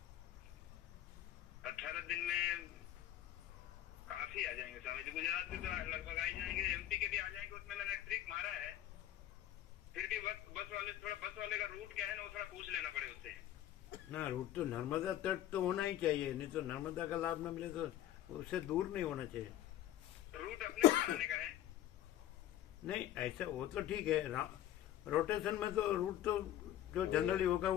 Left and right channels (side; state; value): right; quieter; 12.3 dB